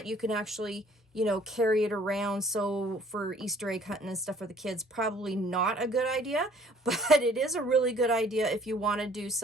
you can actually, you know, carry it around. So for Easter egg hunting and stuff for the kids, probably not a good idea, but it is a really good idea if you want to do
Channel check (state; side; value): normal; both; correlation 0.56